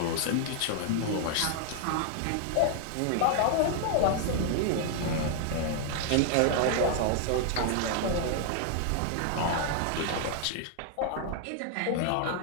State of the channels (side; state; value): both; different; correlation 0.00